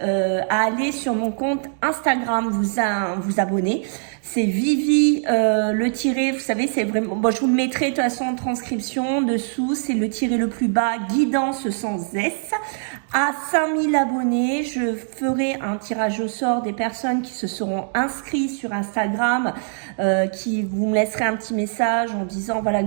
à aller sur mon compte Instagram, vous abonner. C'est Vivi le tiré, vous savez, c'est vraiment... Bon, je vous le mettrai de toute façon en transcription dessous. C'est le tiré le plus bas, guidance sans S. À 5000 abonnés, je ferai un tirage au sort des personnes qui se seront inscrites sur Instagram, qui vous me laisserez un petit message en disant voilà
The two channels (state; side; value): silent; left; digital silence